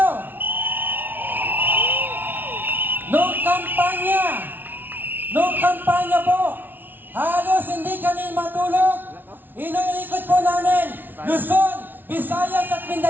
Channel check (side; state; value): left; late; 0.091 ms